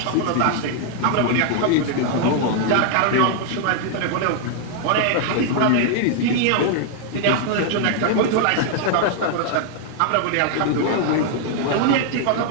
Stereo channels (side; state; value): both; different; correlation 0.00